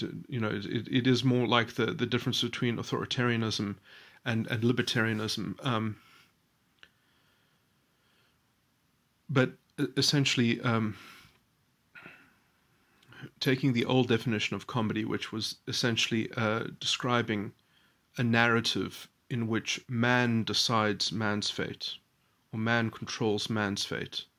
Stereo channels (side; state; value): both; identical; correlation 1.00